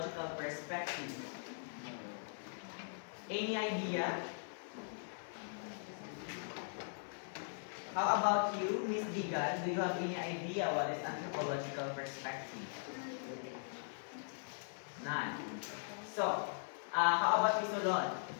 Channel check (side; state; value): right; silent; digital silence